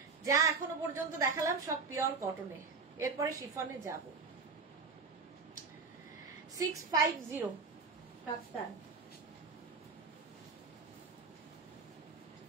যা এখনো পর্যন্ত দেখালাম সব পিওর কটনে, এরপরে শিফনে যাব। 650 কাপ্তান,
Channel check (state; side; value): quieter; left; 4.6 dB